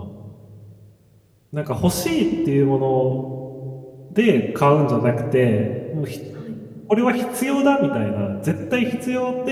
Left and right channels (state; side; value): identical; both; correlation 1.00